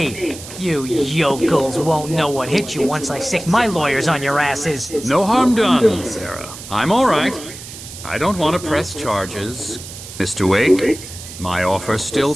You yokels won't know what hit you once I sick my lawyers on your asses. No harm done, Sarah. I'm all right. I don't want to press charges. Mr. Wake, my offer still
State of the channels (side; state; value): right; noise; hiss, 13 dB below the sound